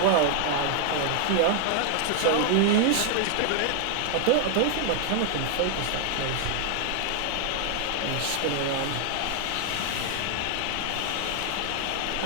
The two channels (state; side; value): different; both; correlation 0.00